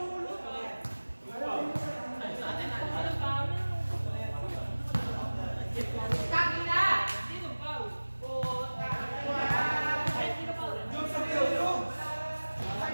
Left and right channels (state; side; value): inverted; both; correlation -1.00